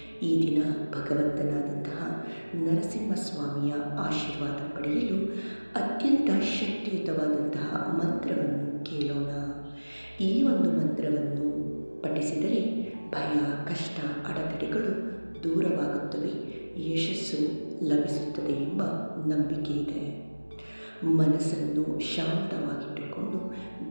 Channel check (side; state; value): both; inverted; correlation -1.00